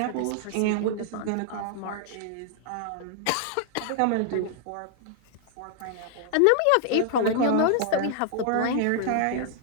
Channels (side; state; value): both; different; correlation 0.00